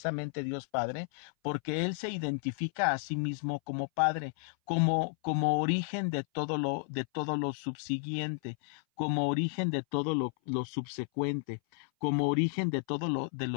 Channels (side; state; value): right; silent; 56 dB below the other